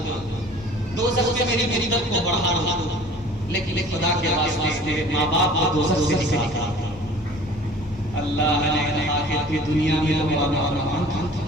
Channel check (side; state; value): both; normal; correlation 0.47